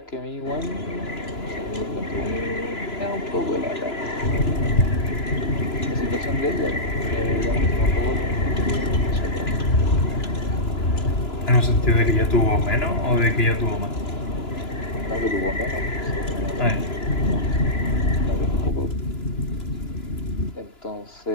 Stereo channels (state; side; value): late; right; 3.0 ms